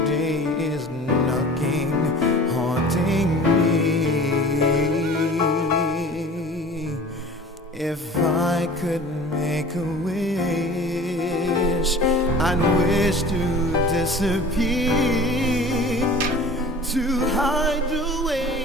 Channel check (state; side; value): normal; both; correlation 0.42